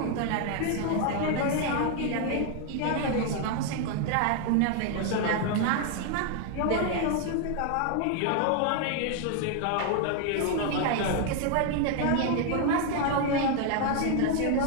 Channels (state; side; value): different; both; correlation 0.00